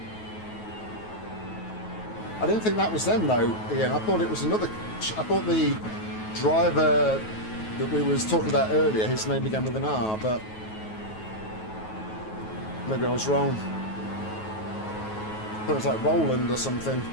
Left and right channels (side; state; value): right; late; 9.3 ms